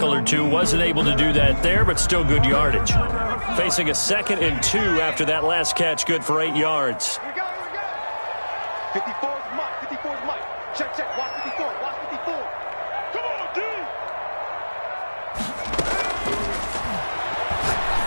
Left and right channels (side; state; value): both; inverted; correlation -1.00